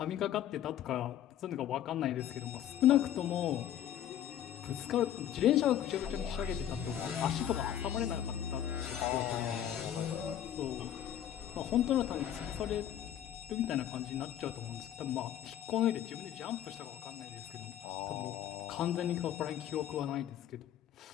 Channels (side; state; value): right; quieter; 11.0 dB